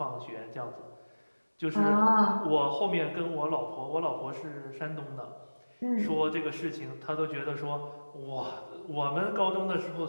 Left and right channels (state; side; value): inverted; both; correlation -1.00